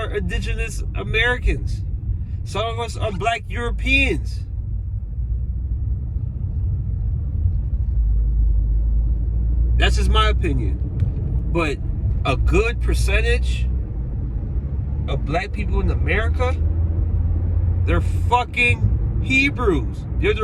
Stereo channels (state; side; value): identical; both; correlation 1.00